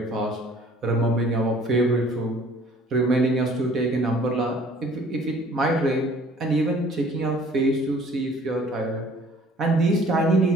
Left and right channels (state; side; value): normal; both; correlation 0.54